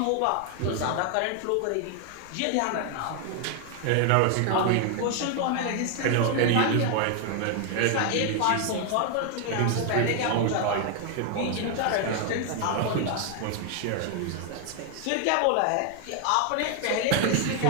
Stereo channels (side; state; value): both; different; correlation 0.00